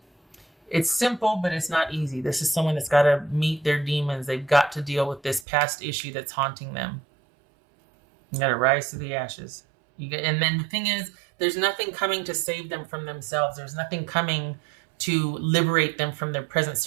It's simple, but it's not easy. This is someone that's got to meet their demons. They've got to deal with this past issue that's haunting them. You got to rise to the ashes. And then the thing is, there's nothing coming to save them from themselves. There's nothing coming to liberate them from their present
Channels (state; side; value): drops out; left; at 5.5 s